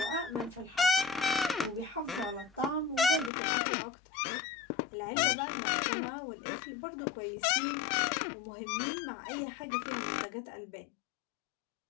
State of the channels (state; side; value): drops out; right; at 3.3 s